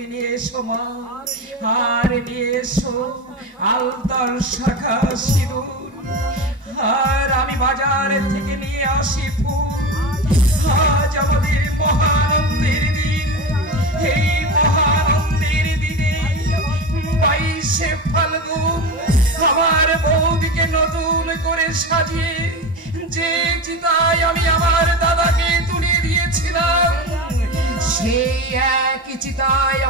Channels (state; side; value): normal; both; correlation 0.24